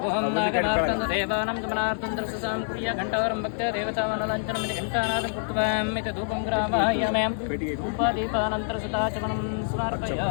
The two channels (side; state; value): right; silent; 61 dB below the other